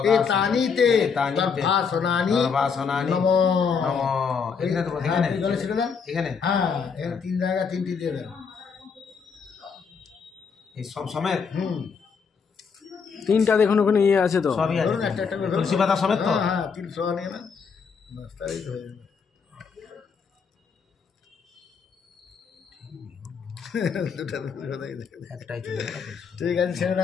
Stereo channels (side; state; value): right; quieter; 5.9 dB